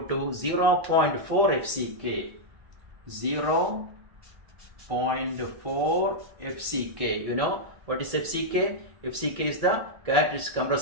to 0.4 FCK. 0.4 FCK. You know what is FCK? FCK is the characteristic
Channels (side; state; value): left; late; 1.7 ms